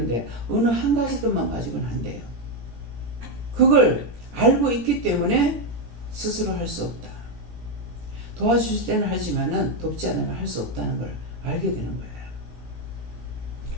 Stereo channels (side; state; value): left; late; 17 ms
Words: 어느 한 가지 것만 가지고는 안 돼요. 그걸 알고 있기 때문에 스스로 할 수 없다. 도와주실 때는 하지만은 돕지 않으면 할 수 없다는 걸 알게 되는 거예요.